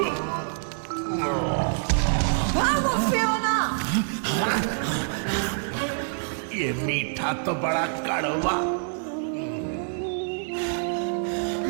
भागो फियोना। ये मीठा तो बड़ा कड़वा।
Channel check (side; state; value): left; silent; digital silence